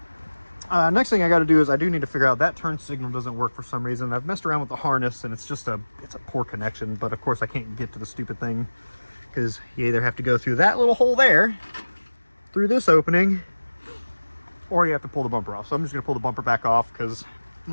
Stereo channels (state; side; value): inverted; both; correlation -1.00